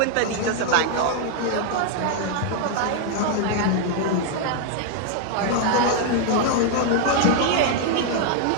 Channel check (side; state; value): both; different; correlation 0.00